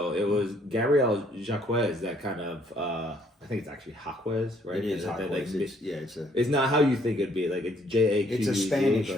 It was Gabrielle Jacquez that kind of, I think it's actually Jaquez, right? It is Jaquez. It's not how you think it'd be. Like, it's J-A-Q-U-E. It's a Spanish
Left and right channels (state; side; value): normal; both; correlation 0.65